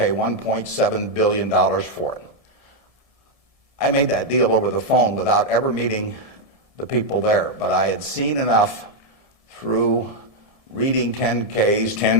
$1.7 billion for it. I made that deal over the phone without ever meeting the people there, but I had seen enough through reading 10Ks,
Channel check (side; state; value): left; late; 1.7 ms